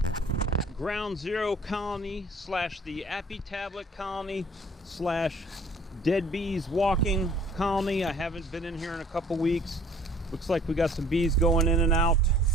Ground Zero Colony slash the Apitablet Colony slash Dead Bees Walking Colony. I haven't been in here in a couple weeks. Looks like we got some bees going in and out.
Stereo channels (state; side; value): normal; both; correlation 0.53